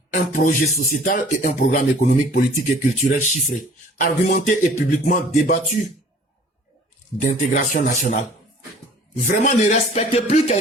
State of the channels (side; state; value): both; normal; correlation 0.50